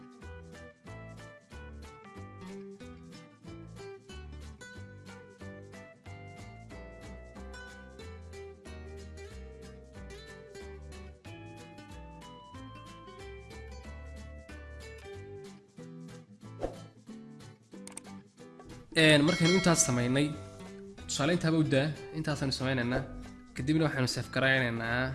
markaynu intaas sameynay tusaale intaaba u daa intaasaynu sameynaynaa. kadibna waxaanu save garaynaynaa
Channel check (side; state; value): both; identical; correlation 1.00